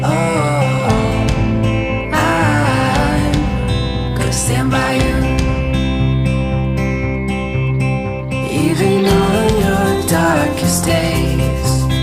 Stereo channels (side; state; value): both; identical; correlation 1.00